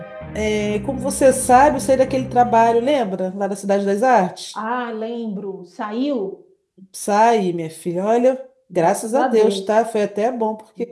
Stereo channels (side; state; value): both; identical; correlation 1.00